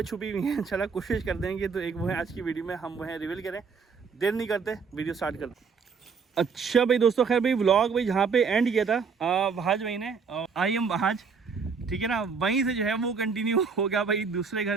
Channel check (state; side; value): quieter; left; 5.5 dB